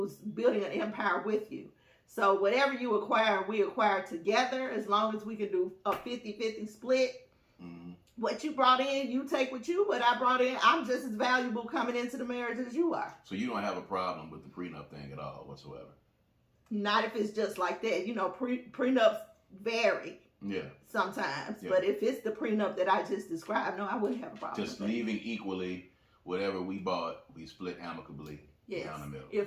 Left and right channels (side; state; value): both; identical; correlation 1.00